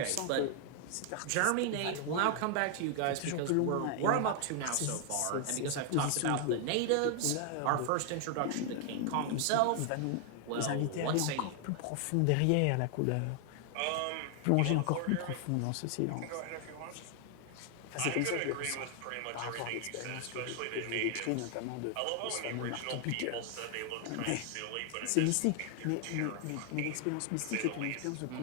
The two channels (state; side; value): different; both; correlation 0.00